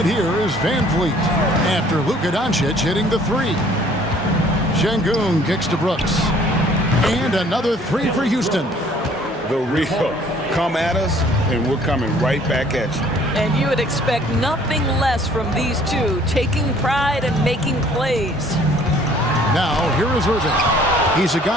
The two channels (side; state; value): both; normal; correlation 0.57